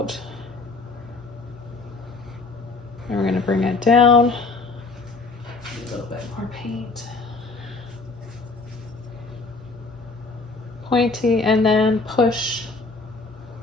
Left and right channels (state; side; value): quieter; right; 3.7 dB